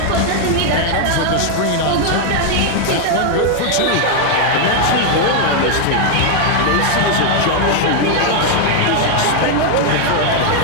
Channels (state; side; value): different; both; correlation 0.00